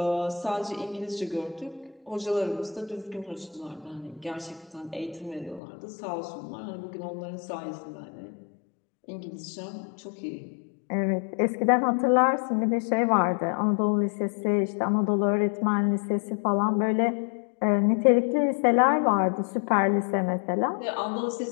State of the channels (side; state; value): right; drops out; at 5.6 s